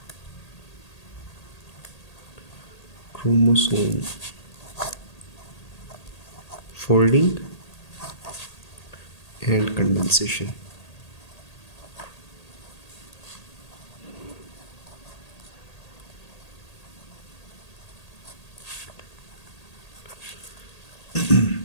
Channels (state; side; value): late; right; 1.8 ms